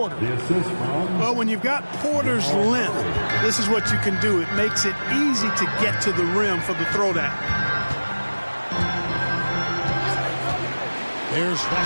Well, when you've got Porter's length, this is what you can do. It makes it easy to get to the rim for the throwdown. There's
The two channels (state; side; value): inverted; both; correlation -1.00